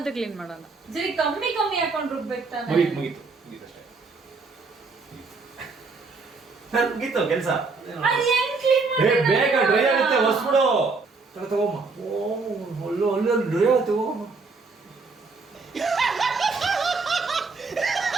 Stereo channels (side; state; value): left; quieter; 4.2 dB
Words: ಕ್ಲೀನ್ ಮಾಡೋಣ. ಜರಿ ಕಮ್ಮಿ ಹಾಕೊಂಡು ರುಬ್ಬೇಕು ತಾನೆ. ಕೆಲಸ ಅದೇನ್ ಕ್ಲೀನ್ ಬೇಗ ಡ್ರೈ ಆಗುತ್ತೆ, ಹೊಸ್ಬಿಡು. ತಗೋಮ್ಮ, ಒಳ್ಳೆ ಡ್ರೈ ಆಗುತ್ತೆ, ಹೋಗಮ್ಮ.